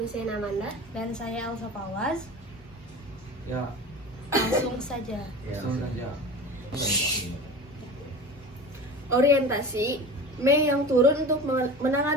Amanda. Dan saya Elsa Pawas. Ya, Langsung saja. langsung saja. Orientasi Mei yang turun untuk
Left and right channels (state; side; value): normal; both; correlation 0.34